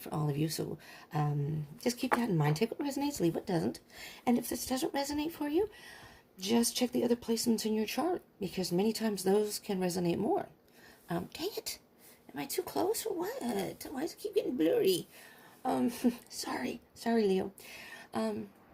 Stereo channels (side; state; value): both; identical; correlation 1.00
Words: for all of you, so just keep that in mind. Take what resonates, leave what doesn't. And if this doesn't resonate for you, just check the other placements in your chart, because many times those can resonate more. Dang it. Am I too close or what? Why does it keep getting blurry? Sorry, Leo.